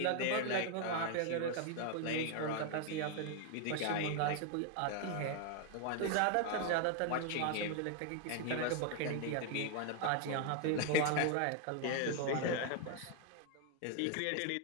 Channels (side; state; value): both; different; correlation 0.01